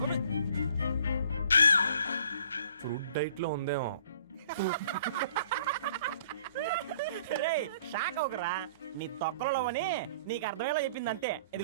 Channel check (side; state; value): both; inverted; correlation -0.55